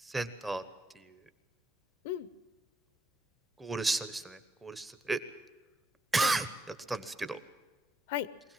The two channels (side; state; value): both; normal; correlation 0.79